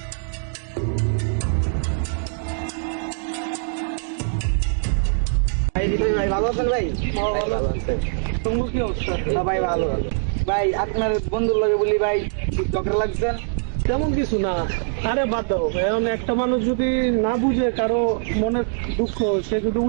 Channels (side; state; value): left; silent; digital silence